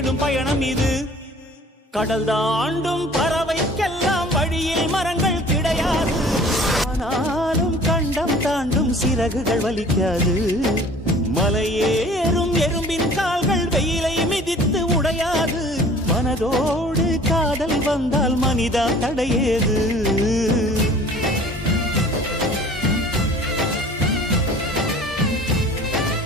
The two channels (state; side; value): normal; both; correlation 0.48